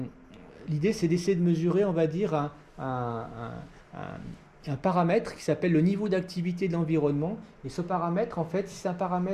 l'idée c'est d'essayer de mesurer, on va dire, un paramètre qui s'appelle le niveau d'activité de l'environnement, et ce paramètre, en fait, si c'est un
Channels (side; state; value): both; identical; correlation 1.00